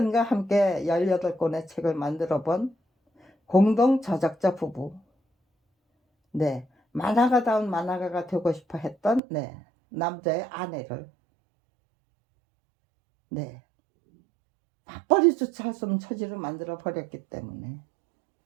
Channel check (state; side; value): drops out; left; at 9.2 s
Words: 함께 18 권의 책을 만들어 본 공동 저작자 부부. 네. 만화가다운 만화가가 되고 싶어 했던 네 남자의 아내를 네 맞벌이조차 할 수 없는 처지로 만들어 버렸기 때문에.